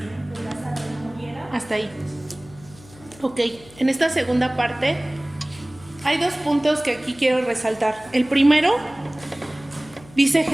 que Lázaro no muriera? Hasta ahí. Ok, en esta segunda parte hay dos puntos que aquí quiero resaltar. El primero, dice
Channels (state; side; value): noise; left; hum, 22 dB below the sound